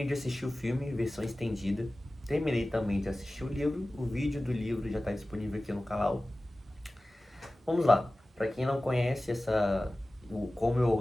de assistir o filme, versão estendida. Terminei também de assistir o livro, o vídeo do livro já está disponível aqui no canal. Vamos lá, para quem não conhece como eu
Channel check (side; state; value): both; normal; correlation 0.97